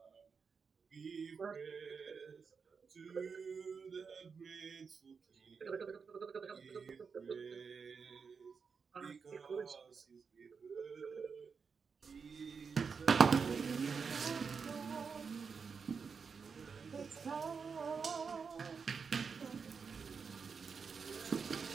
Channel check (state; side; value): quieter; left; 5.6 dB